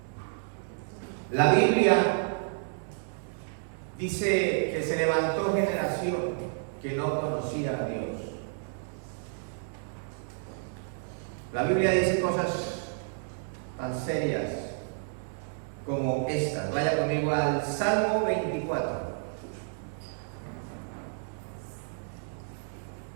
La Biblia dice que se levantó generación que no conocía a Dios. La Biblia dice cosas tan serias como estas. Vaya conmigo al Salmo 24.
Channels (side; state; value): left; silent; 57 dB below the other